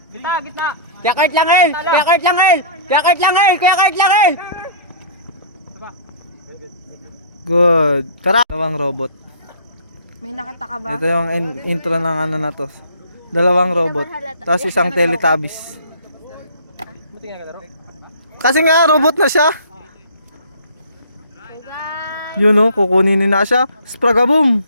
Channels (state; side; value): inverted; both; correlation -0.45